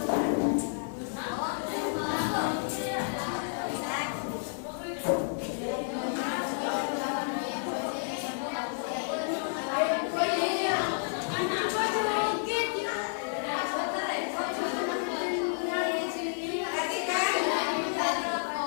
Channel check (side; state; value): right; silent; digital silence